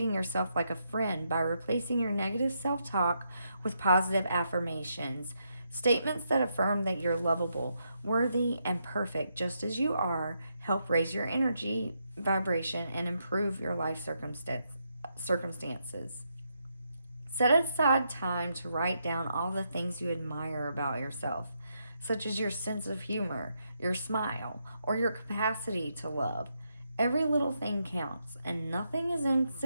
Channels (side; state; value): both; inverted; correlation -0.80